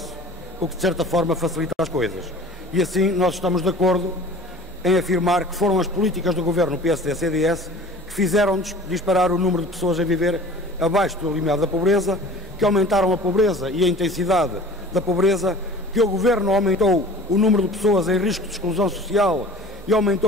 o que de certa forma facilita as coisas. E assim nós estamos de acordo em afirmar que foram as políticas do Governo PSD-CDS que fizeram disparar o número de pessoas a viver abaixo do limiar da pobreza, que aumentaram a pobreza e a intensidade da pobreza, que o Governo aumentou o número de pessoas em risco de exclusão social e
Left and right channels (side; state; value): both; normal; correlation 0.43